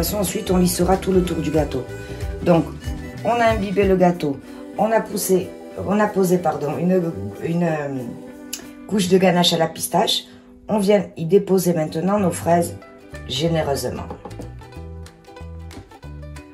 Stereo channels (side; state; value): both; identical; correlation 1.00